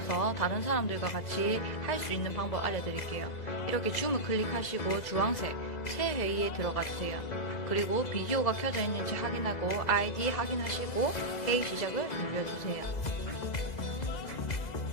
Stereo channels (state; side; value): late; right; 2.0 ms